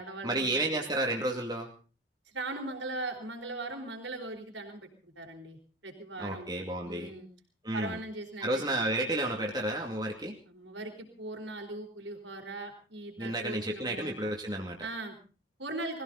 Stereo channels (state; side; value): normal; both; correlation 0.28